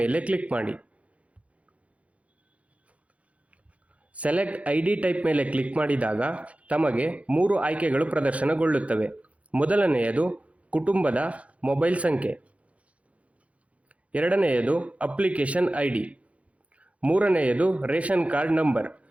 ಕ್ಲಿಕ್ ಮಾಡಿ. ಸೆಲೆಕ್ಟ್ ID ಟೈಪ್ ಮೇಲೆ ಕ್ಲಿಕ್ ಮಾಡಿದಾಗ ತಮಗೆ 3 ಆಯ್ಕೆಗಳು ಪ್ರದರ್ಶನಗೊಳ್ಳುತ್ತವೆ. ಮೊದಲನೆಯದು ಕುಟುಂಬದ ಮೊಬೈಲ್ ಸಂಖ್ಯೆ, ಎರಡನೆಯದು ಅಪ್ಲಿಕೇಶನ್ ID, ಮೂರನೆಯದು ರೇಷನ್ ಕಾರ್ಡ್ ನಂಬರ್.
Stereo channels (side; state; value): left; late; 0.064 ms